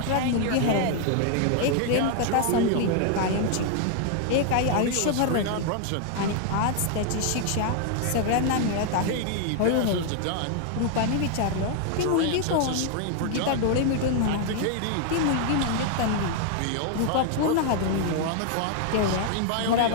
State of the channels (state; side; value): different; both; correlation 0.00